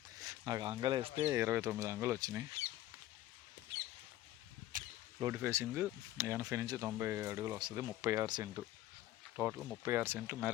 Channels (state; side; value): quieter; right; 14.6 dB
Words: నాకు అంగలు వేస్తే 29 అంగులు వచ్చినాయి. రోడ్డు ఫేసింగ్ 80 నుంచి 90 అడుగులు వస్తుంది. 36 సెంటు టోటల్. 36 సెంట్లు